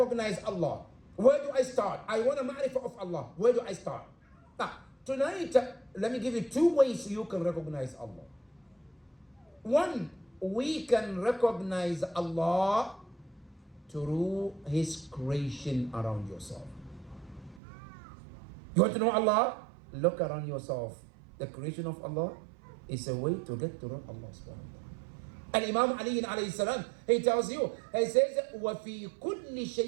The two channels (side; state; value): left; drops out; at 17.6 s